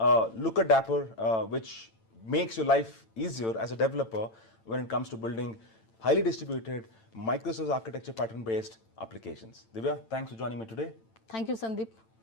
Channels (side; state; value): right; late; 8.9 ms